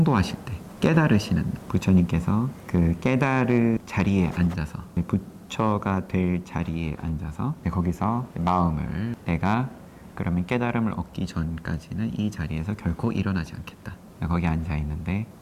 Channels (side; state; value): both; identical; correlation 1.00